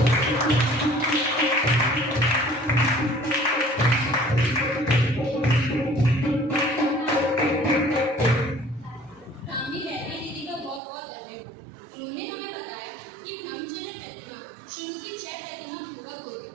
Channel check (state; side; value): drops out; left; at 10.8 s